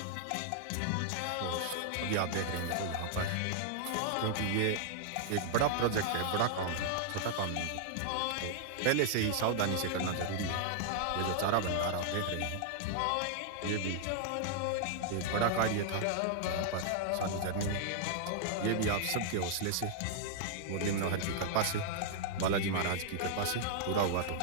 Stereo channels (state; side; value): different; both; correlation -0.01